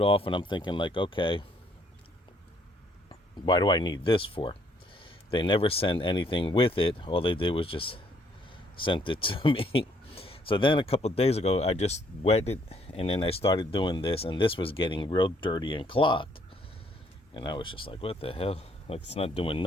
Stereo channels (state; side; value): normal; both; correlation 0.67